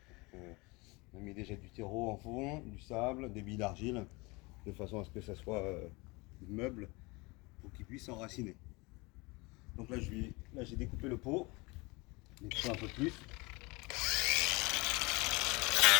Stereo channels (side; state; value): right; quieter; 25.6 dB